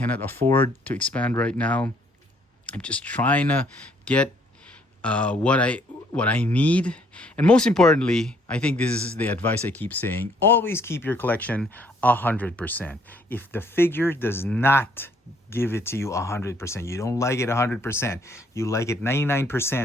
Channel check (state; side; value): normal; both; correlation 0.65